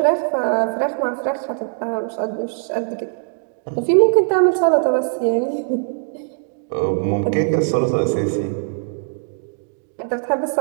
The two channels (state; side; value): silent; left; digital silence